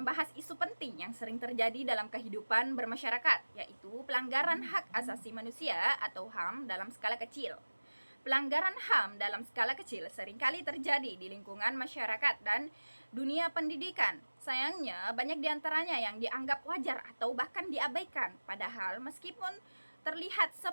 isu penting yang sering terjadi dalam kehidupan bermasyarakat, yaitu pelanggaran hak asasi manusia atau HAM dalam skala kecil. Pelanggaran HAM dalam skala kecil seringkali terjadi di lingkungan masyarakat dan dunia pendidikan. Sayangnya, banyak di antaranya yang dianggap wajar atau bahkan diabaikan. Padahal, meskipun terlihat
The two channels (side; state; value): both; inverted; correlation -1.00